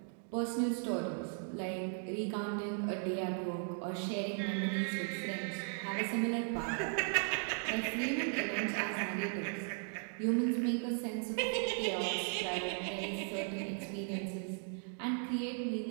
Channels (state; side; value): silent; left; 53 dB below the other